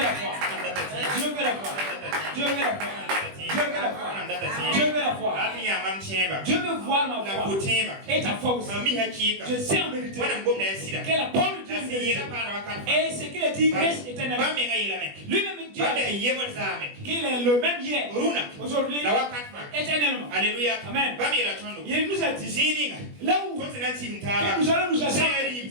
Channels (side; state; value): left; late; 20 ms